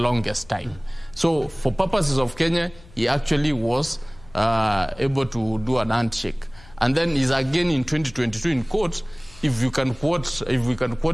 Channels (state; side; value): noise; left; hum, 23 dB below the sound